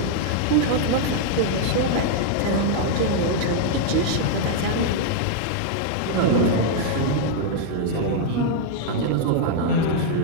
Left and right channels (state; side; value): different; both; correlation 0.00